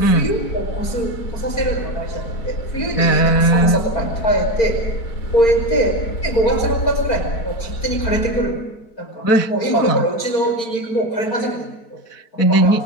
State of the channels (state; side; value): late; right; 4.6 ms